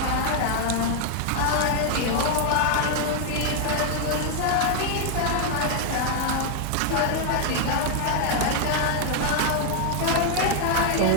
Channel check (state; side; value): different; both; correlation 0.00